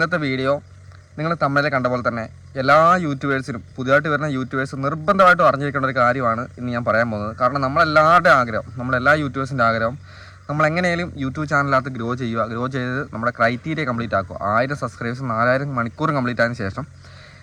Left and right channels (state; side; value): identical; both; correlation 1.00